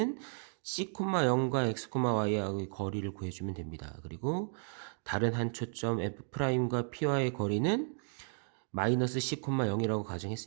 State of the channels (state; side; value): silent; left; 55 dB below the other